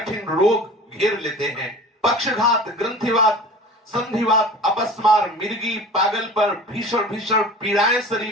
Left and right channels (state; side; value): normal; both; correlation 0.40